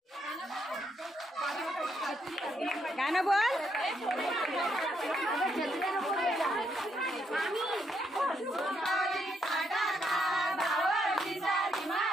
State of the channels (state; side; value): normal; both; correlation 0.76